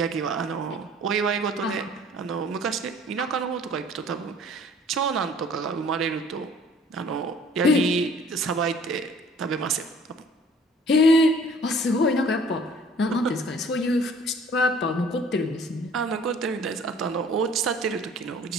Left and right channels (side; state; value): both; normal; correlation 0.53